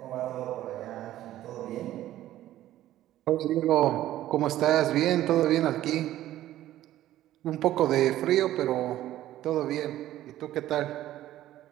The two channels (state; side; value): quieter; left; 13.7 dB